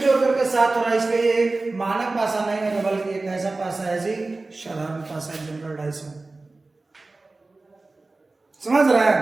करके 7 हो रहा है। इसलिए ये मानक पाशा नहीं है, बल्कि एक ऐसा पाशा है जी साधारण पाशा, जनरल डाइस में। समझ रहे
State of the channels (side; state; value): left; quieter; 3.3 dB